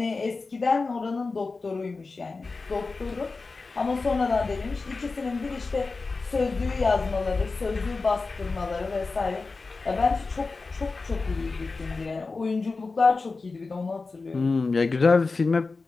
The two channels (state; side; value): quieter; right; 4.0 dB